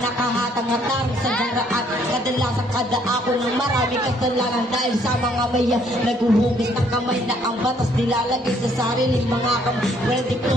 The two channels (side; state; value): both; normal; correlation 0.65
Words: nakahatang-hatang sa daraan. Kadalasan kada ako ng marami kasalanan dahil sa mga maya naguhugis ng kamay na ang batas nilalagay sa sariling mga kamay. Well, di